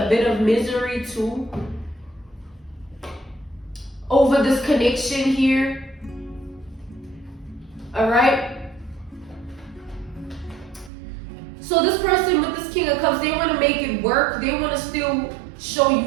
bit of misery too, over this connection here. Alright? So this person with this King of Cups, they want to make it work. They want to still show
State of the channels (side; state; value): left; drops out; at 10.9 s